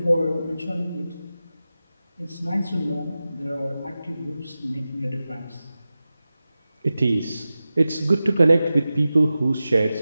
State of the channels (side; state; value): both; inverted; correlation -0.94